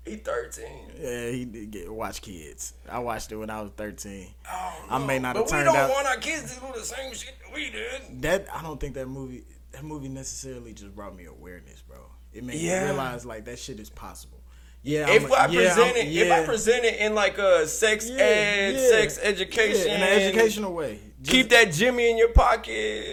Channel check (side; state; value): both; identical; correlation 1.00